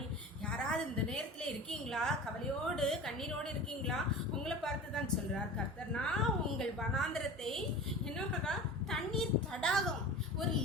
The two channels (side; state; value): both; normal; correlation 0.35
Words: யாராவது இந்த நேரத்தில் இருக்கீங்களா? கவலையோடு கண்ணீரோடு இருக்கீங்களா? உங்களை பார்த்து தான் சொல்கிறார் கர்த்தர், நான் உங்கள் வனாந்தரத்தை என்ன பண்ணுறா தண்ணீர் தடாகம் ஒரு